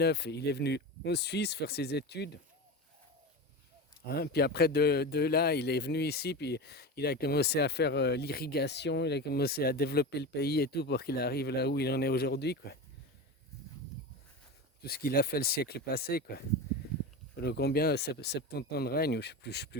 il est venu en Suisse faire ses études. Hein, puis après, de là, il est venu ici, puis il a commencé à faire l'irrigation, il a commencé à développer le pays et tout pour qu'il arrive là où il en est aujourd'hui, quoi. Tout ce qu'il a fait le siècle passé, quoi. Pendant combien 70 ans de règne, je sais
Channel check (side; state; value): both; normal; correlation 0.24